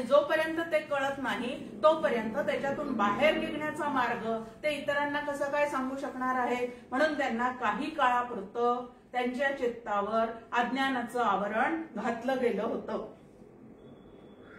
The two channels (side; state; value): both; identical; correlation 1.00